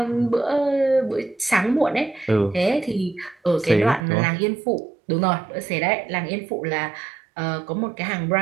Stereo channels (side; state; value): left; drops out; at 4.0 s